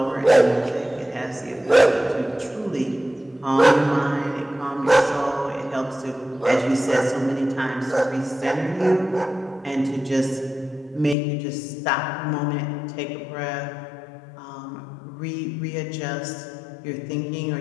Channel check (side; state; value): right; drops out; at 11.2 s